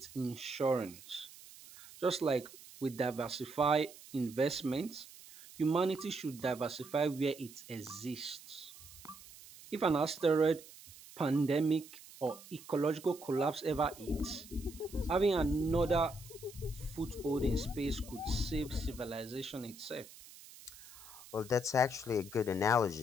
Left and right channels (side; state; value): right; noise; hiss, 19 dB below the sound